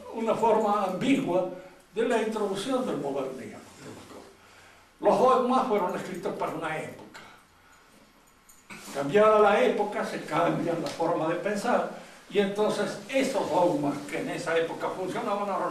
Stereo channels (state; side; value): identical; both; correlation 1.00